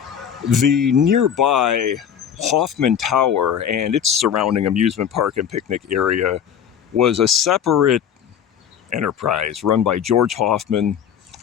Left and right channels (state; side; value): quieter; right; 8.6 dB